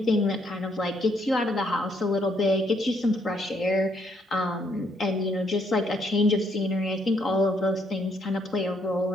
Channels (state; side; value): normal; both; correlation 0.71